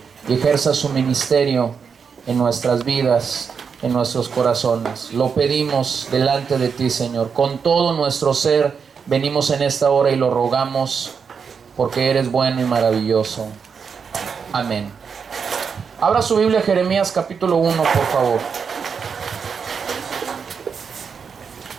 y ejerza su ministerio en nuestras vidas, en nuestros corazones. Lo pedimos delante de ti, Señor. Con todo nuestro ser venimos en esta hora y lo rogamos porque eres bueno y maravilloso. Amén. Abra su Biblia, Jeremías capítulo 1, por favor.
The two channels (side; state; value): left; quieter; 6.2 dB